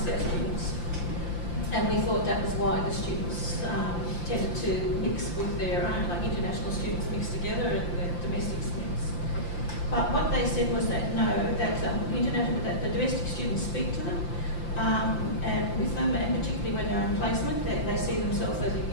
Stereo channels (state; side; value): late; right; 5.8 ms